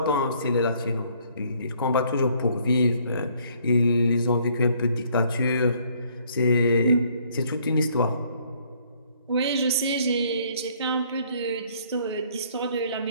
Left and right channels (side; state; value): both; inverted; correlation -0.63